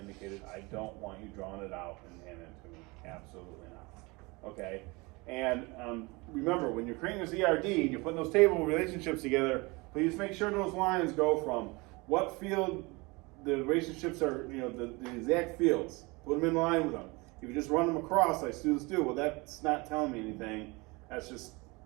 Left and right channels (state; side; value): quieter; left; 25.6 dB